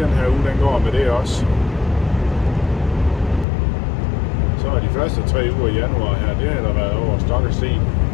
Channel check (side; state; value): right; drops out; at 3.5 s